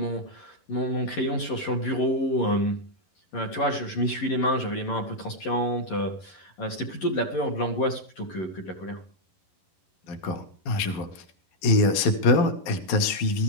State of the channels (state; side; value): late; right; 11 ms